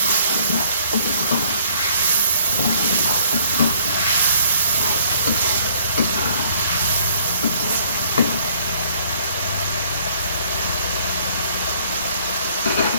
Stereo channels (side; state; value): both; inverted; correlation -0.61